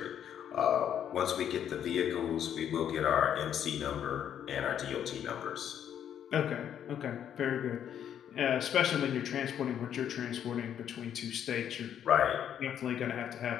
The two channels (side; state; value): right; quieter; 9.5 dB